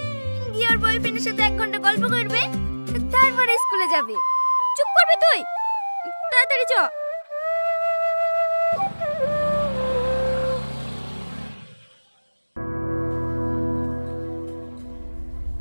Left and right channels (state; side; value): inverted; both; correlation -1.00